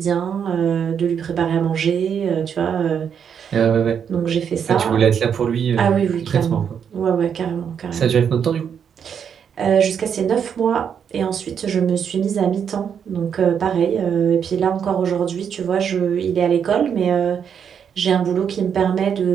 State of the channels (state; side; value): quieter; left; 7.7 dB